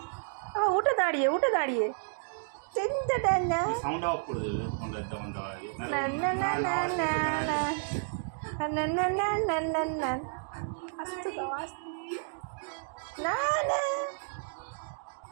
আবার উঠে দাঁড়িয়ে উঠে দাঁড়িয়ে। চিন্তাটা না সাউন্ডটা অফ করে দেবে ফোনটা যখন দেওয়া আগে। না না না না না না না না না না না না আস্তে দাও আস্তে। না না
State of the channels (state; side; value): silent; left; digital silence